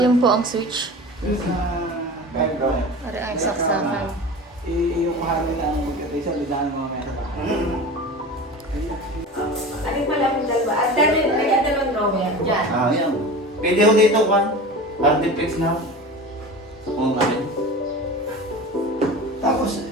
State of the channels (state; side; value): normal; both; correlation 0.33